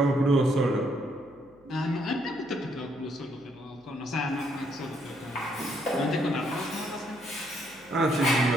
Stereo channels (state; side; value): noise; left; hum, 29 dB below the sound